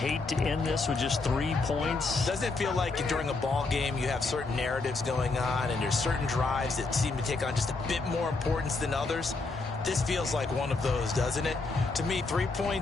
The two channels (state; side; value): quieter; right; 3.7 dB